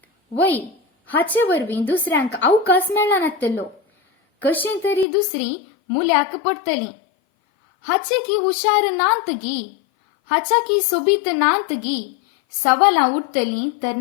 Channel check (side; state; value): right; drops out; at 5.1 s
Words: वय, हाचे वरवीं दुसऱ्यांक अवकाश मेळनातलो. कशें तरी दुसरीं मुल्याक पडटलीं. हाचे की हुशार नांत गी, हाच्या की सोबीत नांत गी, सवालां उठतलीं